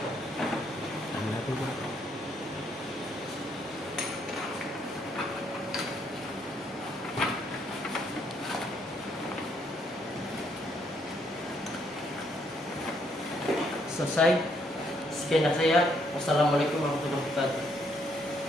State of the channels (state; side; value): normal; both; correlation 0.71